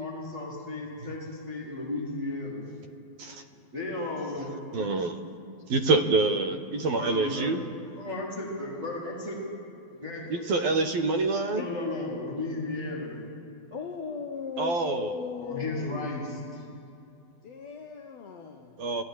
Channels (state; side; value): late; left; 12 ms